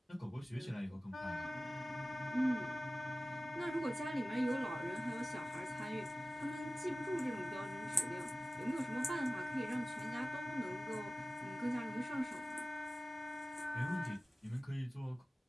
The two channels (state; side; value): normal; both; correlation 0.96